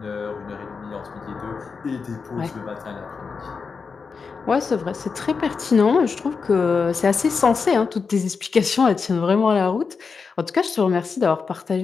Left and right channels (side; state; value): right; quieter; 5.2 dB